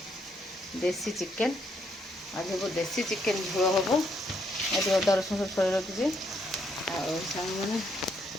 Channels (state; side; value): normal; both; correlation 0.74